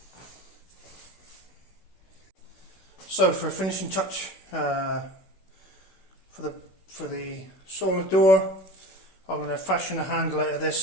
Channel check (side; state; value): right; late; 16 ms